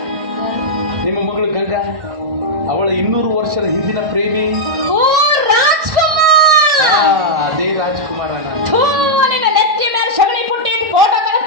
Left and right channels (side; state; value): left; late; 1.6 ms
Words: ನಿಮ್ಮ ಮಗಳು ಗಂಗಾ, ಅವಳ 200 ವರ್ಷದ ಹಿಂದಿನ ಪ್ರೇಮಿ. ಓ ರಾಜ್ಕುಮಾರ್! ಅದೇ ರಾಜ್ಕುಮಾರ ನಾನು. ನಿನ್ನ ನೆತ್ತಿ ಮೇಲೆ ಸಗಣಿ ಪುಟ್ಟಿ ಫೋಟೋ